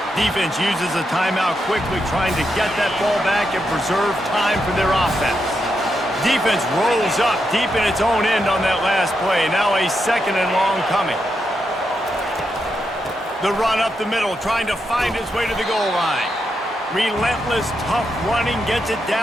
Defense uses a timeout quickly, trying to get that ball back and preserve time for their offense. Defense rolls up deep in its own end on that last play. Now a 2nd and long coming. The run up the middle, trying to find his way to the goal line. Relentless, tough running, gets it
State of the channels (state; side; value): normal; both; correlation 0.84